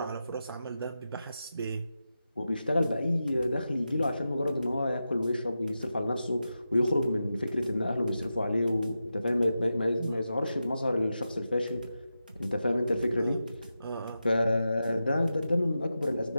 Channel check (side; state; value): both; inverted; correlation -0.90